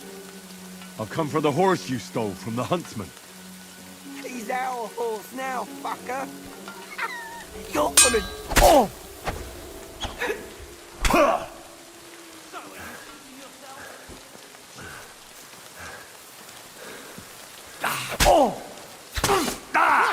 I've come for the horse you stole from the huntsman. He's our horse now, fucker! You're gonna... Oh! Oh!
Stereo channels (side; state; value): both; identical; correlation 1.00